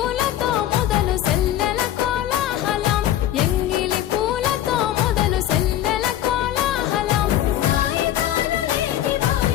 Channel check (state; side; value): quieter; right; 12.1 dB